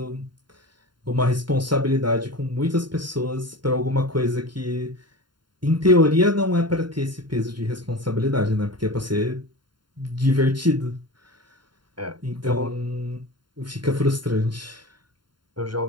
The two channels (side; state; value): left; late; 0.72 ms